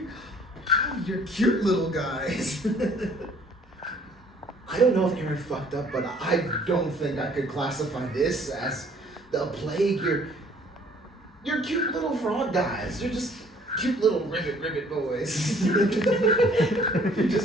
You're cute little guys. I don't know if Erin fucked up, but I don't think I could classify this as the plague. You're cute little frog guys. You're just cute little ribbit boys. You're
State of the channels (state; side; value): normal; both; correlation 0.57